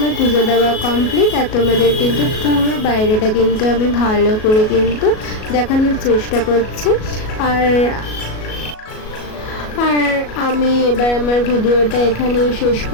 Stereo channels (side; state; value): right; late; 37 ms